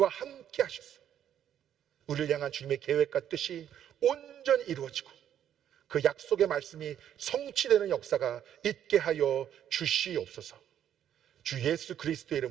함께 하셔서 우리를 향한 주님의 계획과 뜻이 온전히 이루어지고 그 약속의 말씀이 성취되는 역사가 있게 하여 주시옵소서. 주 예수 그리스도의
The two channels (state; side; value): quieter; left; 10.1 dB